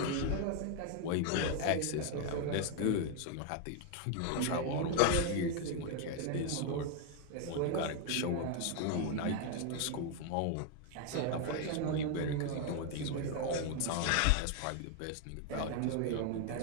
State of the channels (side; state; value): both; different; correlation 0.00